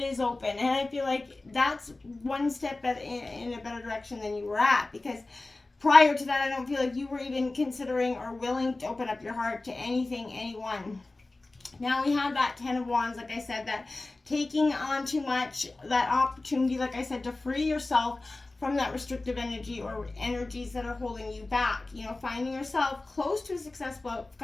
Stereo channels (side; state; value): right; quieter; 3.1 dB